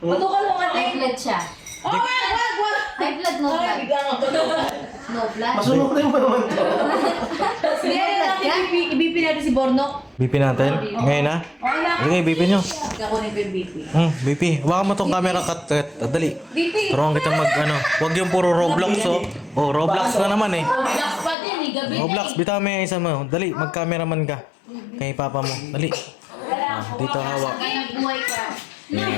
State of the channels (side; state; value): right; drops out; at 21.4 s